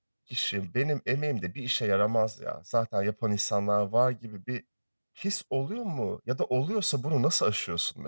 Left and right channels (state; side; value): inverted; both; correlation -1.00